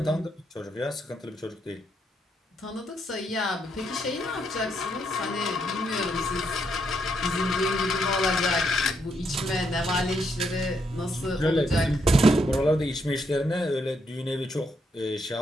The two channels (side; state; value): both; normal; correlation 0.77